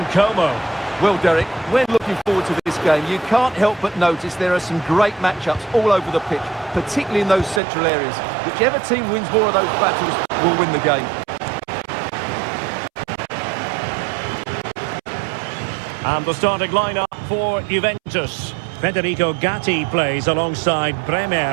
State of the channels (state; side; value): drops out; left; at 7.6 s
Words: Como. Well, Derek, when looking forward to this game, you can't help but notice there are some great matchups all over the pitch, particularly in those central areas. Whichever team wins more of those battles will win the game. And the starting lineup for Juventus. Federico Gatti plays alongside